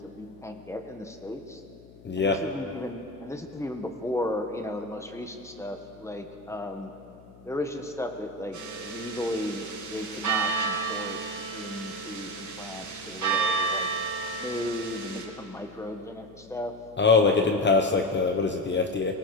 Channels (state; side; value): noise; left; hum, 21 dB below the sound